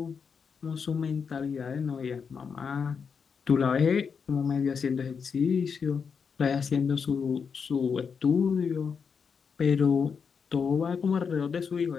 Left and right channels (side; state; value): right; quieter; 6.1 dB